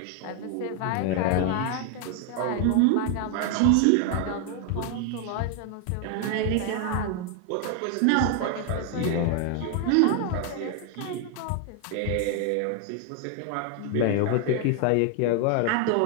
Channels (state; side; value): different; both; correlation 0.01